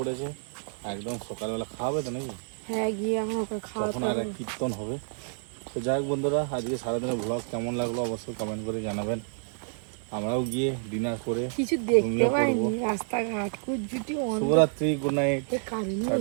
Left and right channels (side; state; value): left; silent; 59 dB below the other